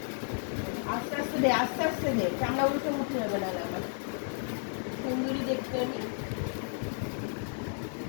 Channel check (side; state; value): right; silent; 56 dB below the other